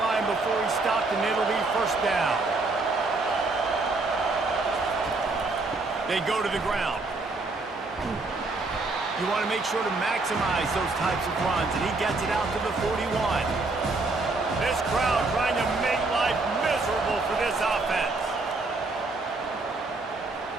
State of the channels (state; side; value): quieter; left; 3.4 dB